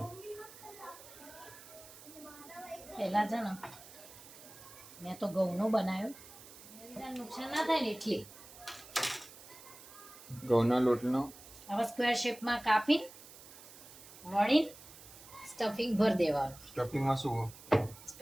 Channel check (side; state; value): right; noise; hiss, 18 dB below the sound